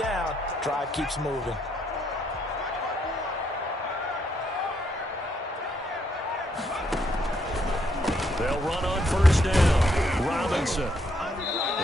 Drive keeps moving. They'll run on first down. Robinson.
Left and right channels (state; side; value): normal; both; correlation 0.74